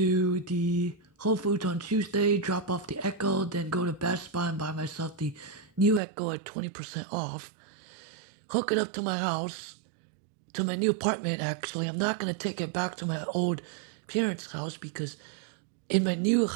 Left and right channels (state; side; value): drops out; left; at 6.0 s